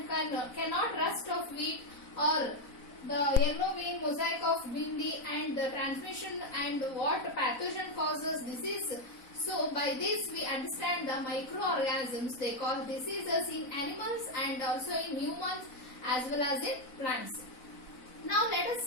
cannot rust of wheat or the yellow vein mosaic of bindi and the transmission and what pathogen causes disease. So by this we understand the microorganisms, they cause diseases in animals and also in humans as well as in plants. Now let us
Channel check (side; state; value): right; late; 4.0 ms